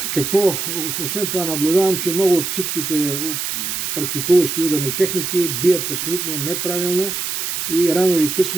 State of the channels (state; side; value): noise; right; hiss, 3 dB below the sound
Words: Какво? Освен това наблюдавам, че много от всичките практикуващи ударни техники бият абсолютно неправилно и рано или